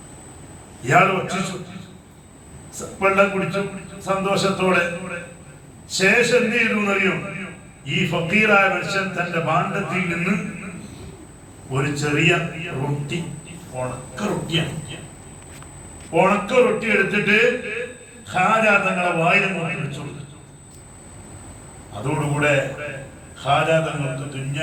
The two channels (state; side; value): identical; both; correlation 1.00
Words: ഇയാൾ ഭക്ഷിച്ചു, വെള്ളം കുടിച്ചു സന്തോഷത്തോടെ. ശേഷം എന്ത് ചെയ്തു എന്നറിയോ? ഈ ഫക്കീറായ മനുഷ്യൻ തന്റെ ഭാണ്ഡത്തിൽ നിന്ന് ഒരു ചെറിയ റൊട്ടി, ഉണക്ക റൊട്ടി എടുത്തിട്ട് ഖാജ തങ്ങളെ വായിൽ വെച്ചു കൊടുത്തു. അതോടുകൂടെ ഖാജ തങ്ങൾക്ക്